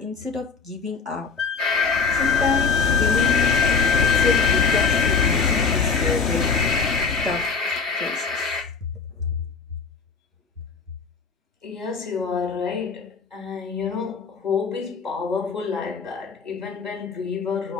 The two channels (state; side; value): quieter; right; 5.1 dB